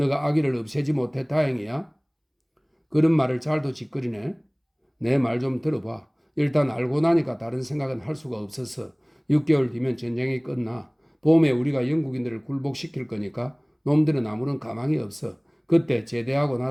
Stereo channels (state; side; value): identical; both; correlation 1.00